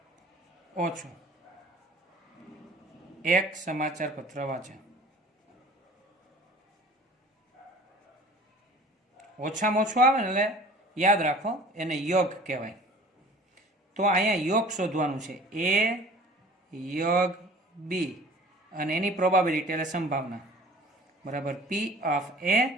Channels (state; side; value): normal; both; correlation 0.46